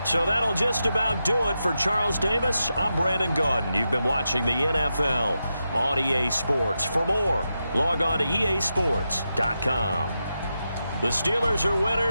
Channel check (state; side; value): inverted; both; correlation -0.88